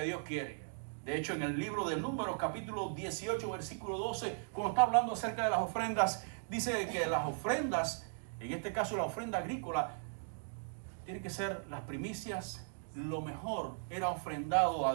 Dios quiere. De hecho, en el libro de Números, capítulo 18, versículo 12, cuando está hablando acerca de las ofrendas, dice que las ofrendas, en este caso la ofrenda agrícola, tienen que ser las primicias. Lo mejor era ofrendado a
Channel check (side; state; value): left; silent; digital silence